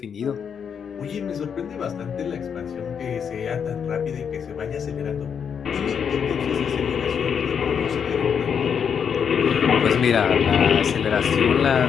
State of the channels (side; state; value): right; quieter; 7.3 dB